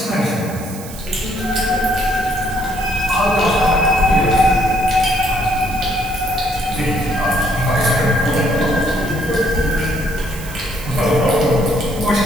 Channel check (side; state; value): right; noise; hiss, 16 dB below the sound